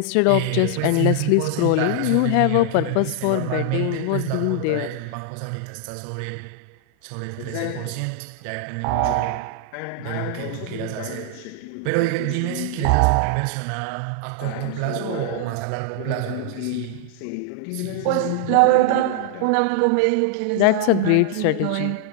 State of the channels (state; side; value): different; both; correlation -0.01